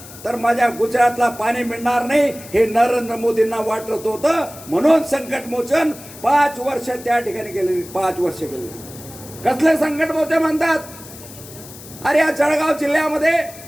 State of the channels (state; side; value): noise; left; hiss, 17 dB below the sound